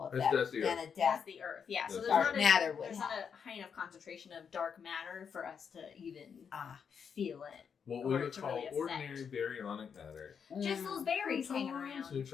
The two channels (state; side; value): quieter; right; 6.8 dB